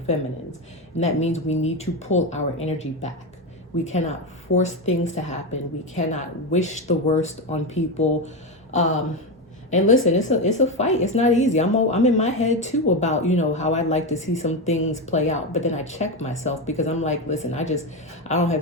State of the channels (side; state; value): both; normal; correlation 0.13